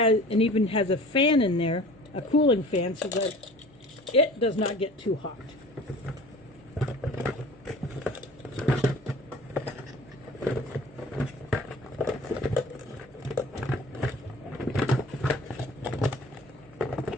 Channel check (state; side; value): normal; both; correlation 0.44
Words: even has a fan in there, a cooling fan, so that it does not get too hot.